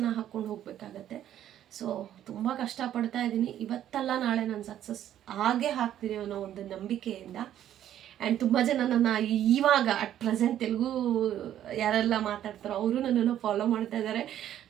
ಹಾಕ್ಕೊಂಡು ಹೋಗಬೇಕಾಗತ್ತೆ. ಸೊ ತುಂಬ ಕಷ್ಟಪಡ್ತಾ ಇದ್ದೀನಿ. ಇವತ್ತಲ್ಲ ನಾಳೆ ನಾನು ಸಕ್ಸಸ್ ಆಗೇ ಹಾಕ್ತೀನಿ ಅನ್ನೋ ಒಂದು ನಂಬಿಕೆಯಿಂದ. ಆ್ಯಂಡ್ ತುಂಬ ಜನ ನನ್ನ ಇವಾಗ ಅಟ್ ಪ್ರೆಸೆಂಟ್ ತೆಲುಗು ಯಾರೆಲ್ಲ ಮಾತಾಡ್ತಾರೋ ಅವರು ನನ್ನನ್ನು ಫಾಲೋ ಮಾಡ್ತಾ ಇದ್ದಾರೆ.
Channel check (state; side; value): quieter; left; 11.3 dB